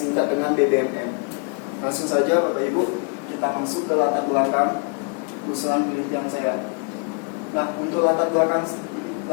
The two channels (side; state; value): right; quieter; 36.2 dB